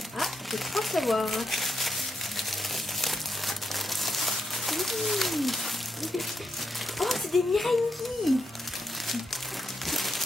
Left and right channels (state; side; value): normal; both; correlation 0.82